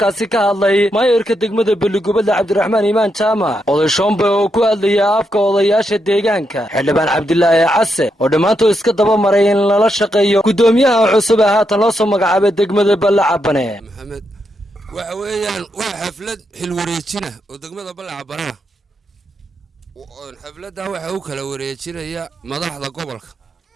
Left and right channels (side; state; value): both; normal; correlation 0.82